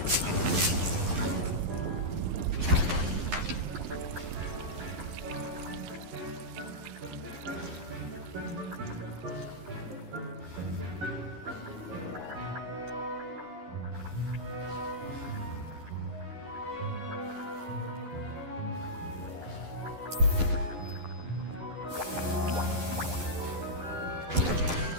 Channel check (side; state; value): left; late; 11 ms